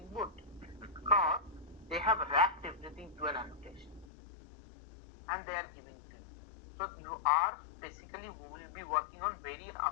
Boot? Because they have wrapped everything to an annotation and they are giving to you. So you are basically will be working on very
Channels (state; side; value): drops out; right; at 4.0 s